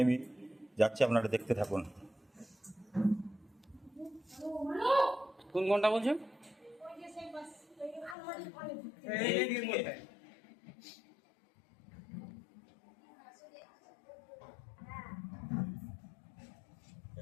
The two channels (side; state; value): right; drops out; at 8.2 s